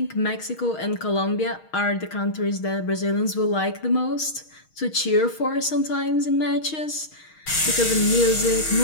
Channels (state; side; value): late; right; 6.3 ms